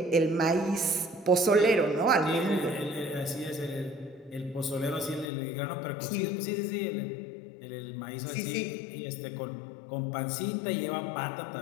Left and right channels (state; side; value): drops out; right; at 5.3 s